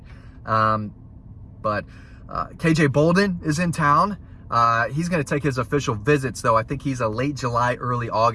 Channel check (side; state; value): both; identical; correlation 1.00